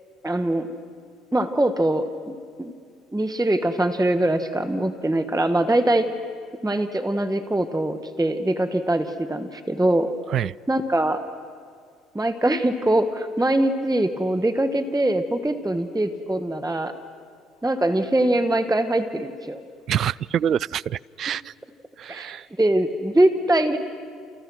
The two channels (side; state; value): both; normal; correlation 0.88